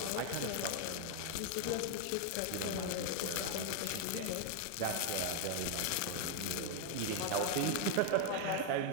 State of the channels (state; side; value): different; both; correlation 0.00